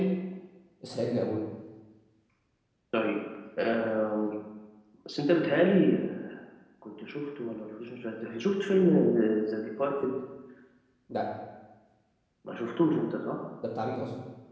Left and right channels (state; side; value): identical; both; correlation 1.00